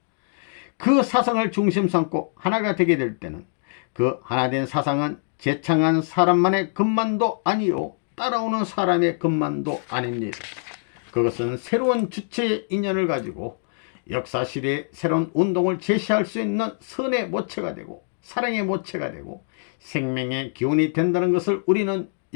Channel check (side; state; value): right; silent; digital silence